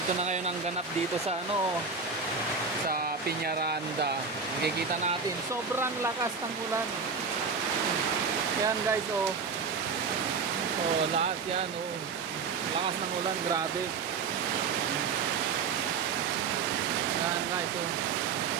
na ngayon ang ganap dito sa sa Peñaranda. Makikita natin, sobrang lakas ng ulan. Yan guys, lahat yan, lakas ng ulan, grabe. Yan guys,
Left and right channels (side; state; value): left; quieter; 5.3 dB